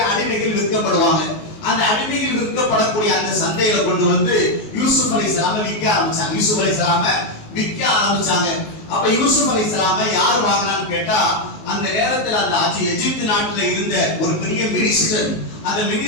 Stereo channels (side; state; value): right; late; 19 ms